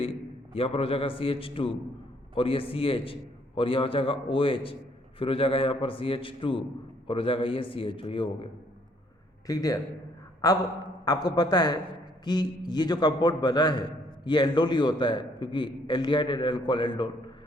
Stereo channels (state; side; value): normal; both; correlation 0.66